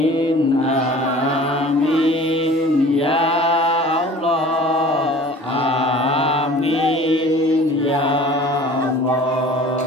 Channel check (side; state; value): both; normal; correlation 0.45